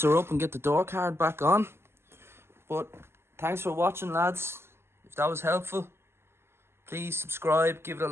her up and get the door card back on. But thanks for watching lads. If that was helpful, please subscribe, give it a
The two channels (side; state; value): left; late; 0.12 ms